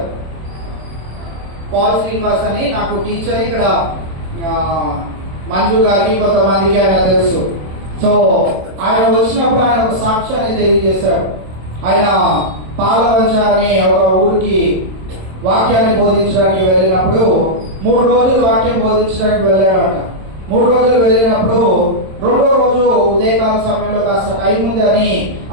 పాల్ శ్రీనివాస్ అని నాకు టీచర్, ఇక్కడ మంజు గారికి కొంతమందికి ఆయన తెలుసు. సో ఆయన వచ్చినప్పుడు ఆయన ఒక సాక్ష్యాన్ని తెలియజేశాడు. ఆయన పాలవంచ అనే ఒక ఊరికి వాక్యాన్ని బోధించడానికి వెళ్ళినప్పుడు 3 రోజులు వాక్యం బోధించడానికి వెళ్ళాడంట. 3 రోజులు వెళ్ళినప్పుడు 2వ రోజు ఉదయకాల సమయంలో కాస్త టైం ఉంది అని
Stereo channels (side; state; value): left; late; 26 ms